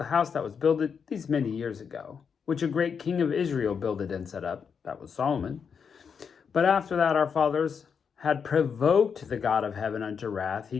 house that was builded these many years ago, which a great king of Israel builded and set up. That was Solomon. But after that our fathers had provoked the God of heaven unto wrath. He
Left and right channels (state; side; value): quieter; right; 6.5 dB